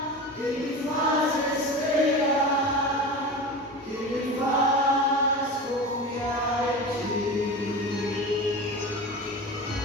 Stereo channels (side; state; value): both; normal; correlation 0.29